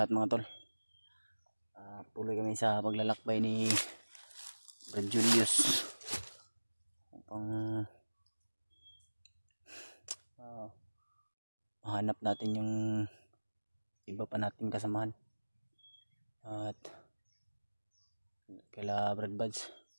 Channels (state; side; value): inverted; both; correlation -1.00